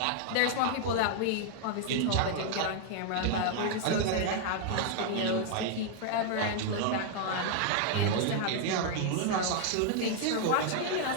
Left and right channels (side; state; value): both; different; correlation 0.00